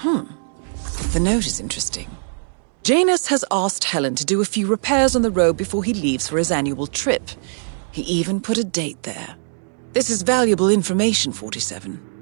The note is interesting. Janus has asked Helen to do a few repairs on the robe before he leaves for his annual trip. He even put a date there. This is valuable information, 47.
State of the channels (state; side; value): silent; left; digital silence